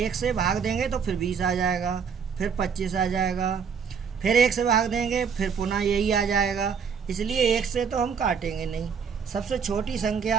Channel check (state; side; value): quieter; left; 6.5 dB